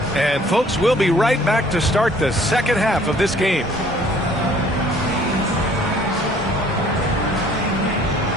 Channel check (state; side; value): normal; both; correlation 0.56